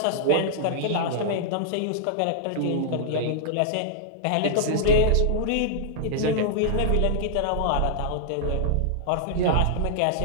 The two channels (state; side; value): different; both; correlation -0.01